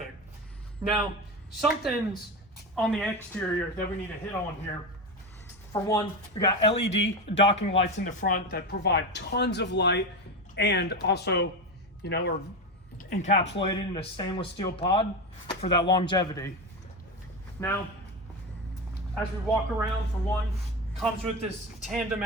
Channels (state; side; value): normal; both; correlation 0.18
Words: Now, something's on the exterior that we need to hit on here. For one, we got LED docking lights in the front that provide tons of light, and also, are encapsulated in a stainless steel pod for that longevity. Now, as we walk around, for one, comes with this tandem